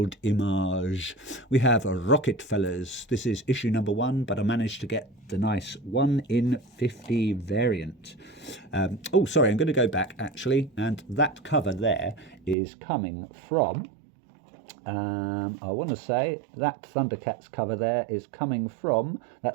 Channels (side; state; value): left; drops out; at 12.6 s